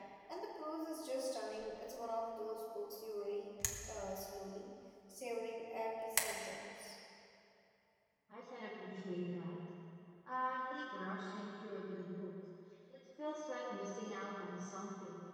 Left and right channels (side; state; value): both; identical; correlation 1.00